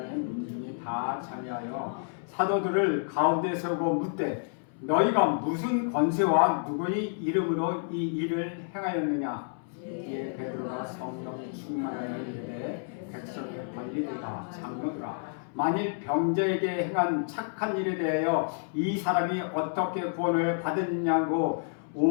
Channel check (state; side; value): silent; right; 58 dB below the other